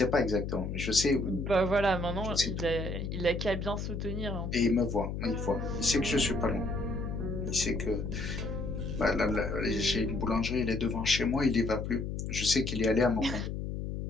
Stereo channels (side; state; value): left; noise; hum, 4 dB below the sound